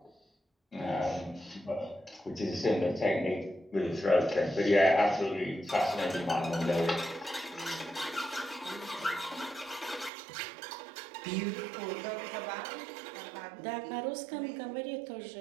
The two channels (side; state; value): left; drops out; at 10.1 s